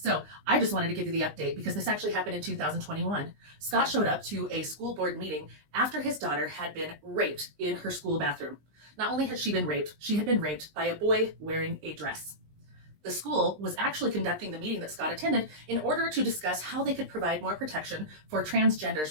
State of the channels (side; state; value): left; late; 20 ms